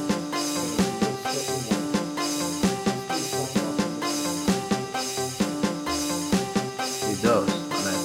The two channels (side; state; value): both; identical; correlation 1.00